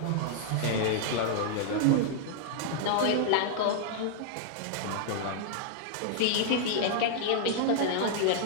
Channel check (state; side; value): different; both; correlation -0.01